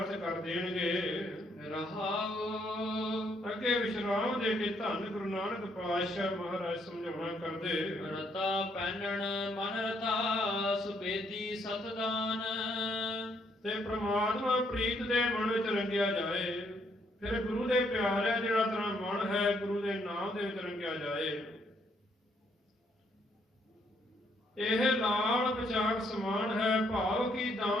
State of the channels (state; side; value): normal; both; correlation 0.71